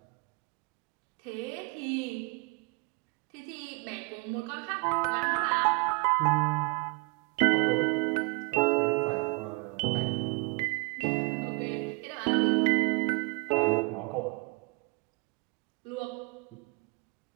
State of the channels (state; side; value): quieter; left; 30.1 dB